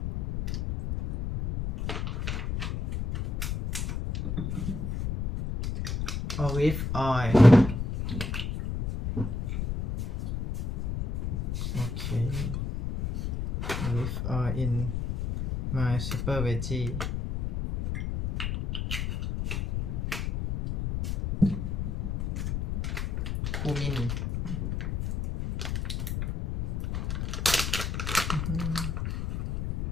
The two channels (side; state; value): left; noise; rumble, 2 dB below the sound